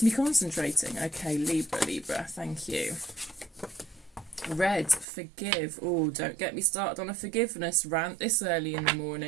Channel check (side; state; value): left; drops out; at 5.1 s